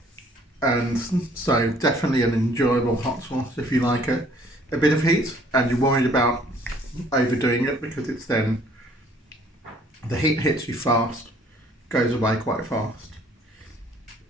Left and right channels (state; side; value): normal; both; correlation 0.59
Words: And so definitely an enjoyable hot sauce if you like it. A bit of heat, and you're worried about overdoing it because it's then the heat hits you fast, goes away quite fast.